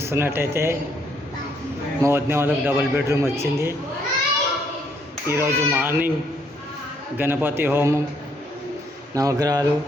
మా వదిన వాళ్ళకి డబుల్ బెడ్రూమ్ వచ్చింది. ఈరోజు మార్నింగ్ గణపతి హోమం, నవగ్రహాలు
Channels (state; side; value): normal; both; correlation 0.69